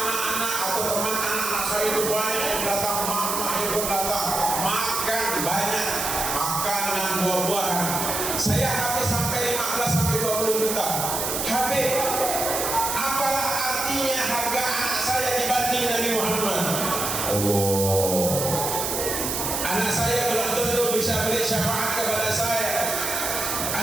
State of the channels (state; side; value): noise; right; hiss, 1 dB below the sound